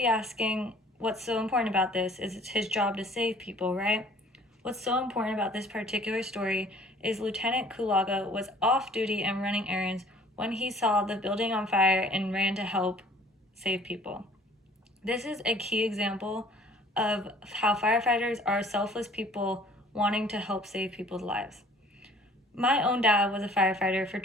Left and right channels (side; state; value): both; normal; correlation 0.53